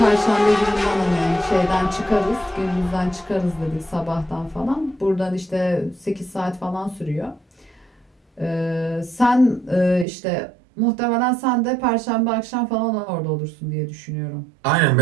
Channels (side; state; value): left; drops out; at 10.1 s